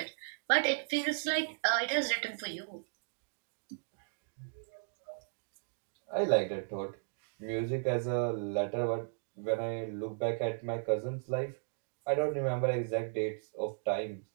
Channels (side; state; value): left; silent; digital silence